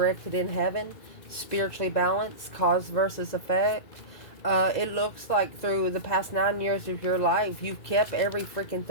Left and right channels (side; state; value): right; late; 2.0 ms